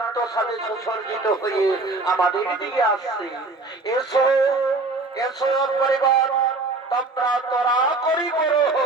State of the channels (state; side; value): quieter; left; 3.4 dB